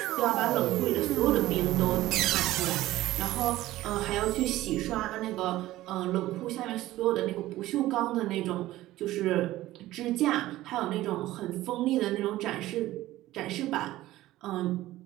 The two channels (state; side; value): quieter; left; 16.0 dB